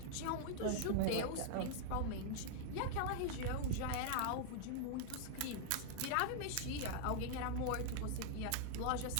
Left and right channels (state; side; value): different; both; correlation 0.00